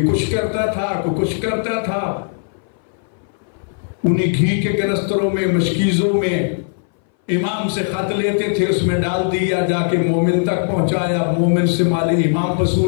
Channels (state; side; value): silent; right; 61 dB below the other